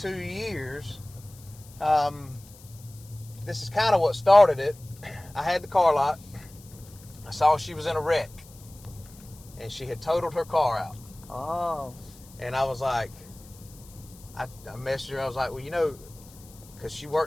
2 years, this is kind of what started it. I had the car lot. I saw she was in a wreck, and she had totaled her car out. Oh. And I was like, I messaged her. I was like, well, because she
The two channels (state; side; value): noise; left; hiss, 22 dB below the sound